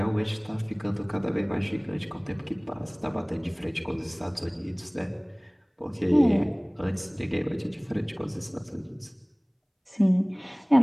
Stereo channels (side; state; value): both; identical; correlation 1.00